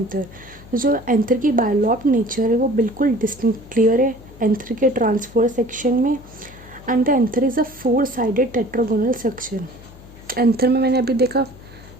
जो एंथर की बायलॉब्ड नेचर है वो बिल्कुल डिस्टिंक्ट क्लियर है एंथर के ट्रांसफर सेक्शन में। And the anther is a 4 sided tetragonal section. Anther में मैंने अभी देखा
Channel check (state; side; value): noise; left; hum, 21 dB below the sound